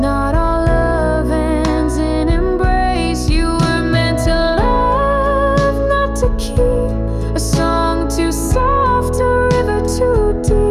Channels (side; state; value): both; identical; correlation 1.00